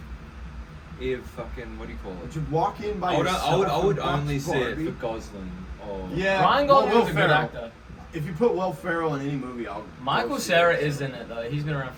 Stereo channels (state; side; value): identical; both; correlation 1.00